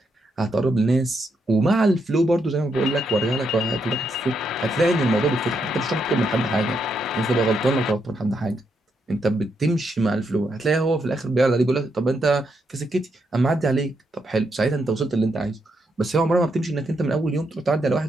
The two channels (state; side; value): normal; both; correlation 0.79